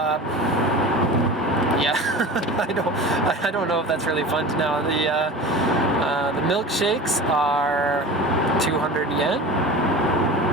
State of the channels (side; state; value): both; normal; correlation 0.35